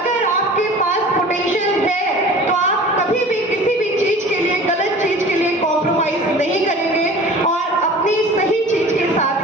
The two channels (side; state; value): both; normal; correlation 0.42